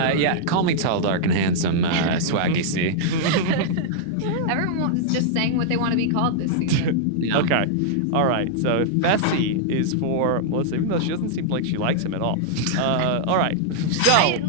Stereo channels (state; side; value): different; both; correlation -0.02